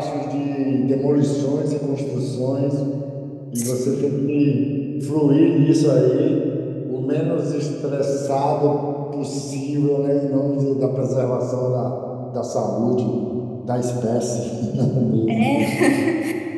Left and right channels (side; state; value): both; identical; correlation 1.00